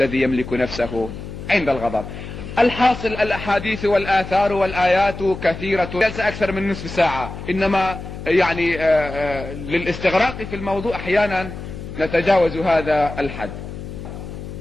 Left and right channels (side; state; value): left; noise; hum, 10 dB below the sound